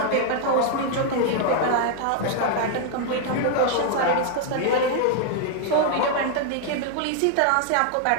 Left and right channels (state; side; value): different; both; correlation 0.00